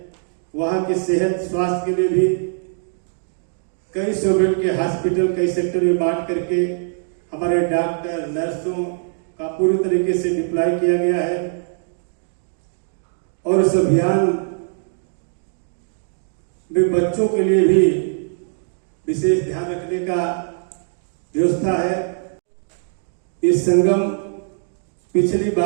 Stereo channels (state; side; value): silent; left; digital silence